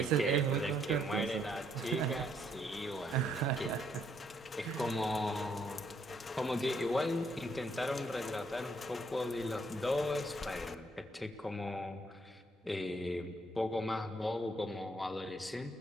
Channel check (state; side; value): normal; both; correlation 0.71